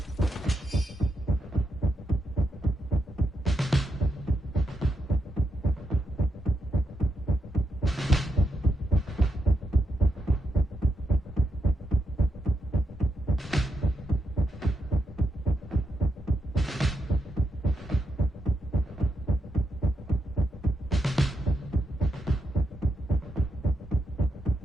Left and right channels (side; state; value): both; normal; correlation 0.83